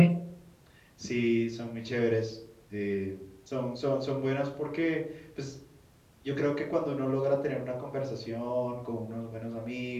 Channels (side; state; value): both; identical; correlation 1.00